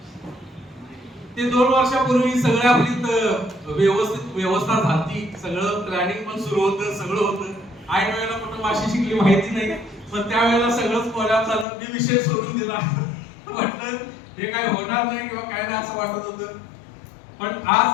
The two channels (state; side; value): drops out; right; at 11.7 s